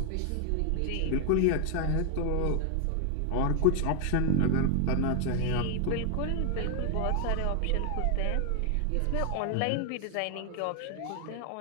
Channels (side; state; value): both; different; correlation 0.00